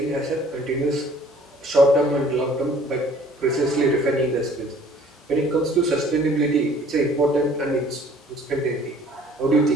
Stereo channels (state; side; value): normal; both; correlation 0.54